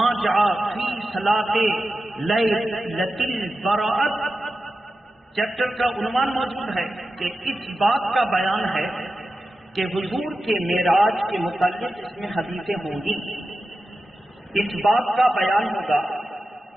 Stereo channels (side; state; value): both; normal; correlation 0.92